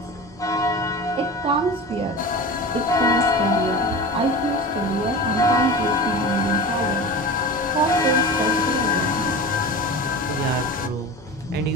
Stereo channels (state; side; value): normal; both; correlation 0.31